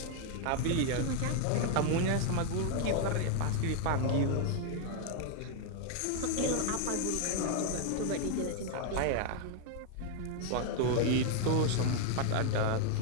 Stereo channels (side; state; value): both; different; correlation 0.00